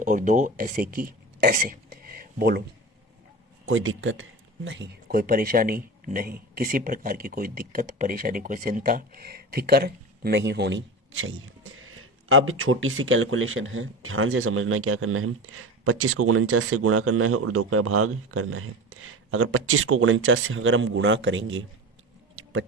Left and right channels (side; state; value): both; normal; correlation 0.29